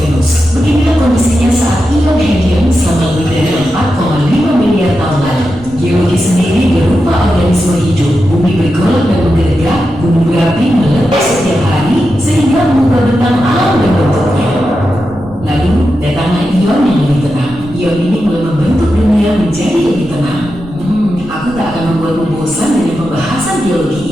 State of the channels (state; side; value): noise; right; rumble, 19 dB below the sound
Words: Beginilah kondisinya saat ion helium selama lebih dari 4,5 miliar tahun lalu. Geologi sendiri berupa organisme hidup. Bumi bergolak dan bergerak, gunung berapi meletus setiap hari sehingga mengubah bentang alam dan bentuknya. Lalu, datanglah ion yang lebih tenang. Ion ini mulai membentuk dunia menjadi lebih tenang. Aku tak akan membuatmu bosan dengan pembahasan geologi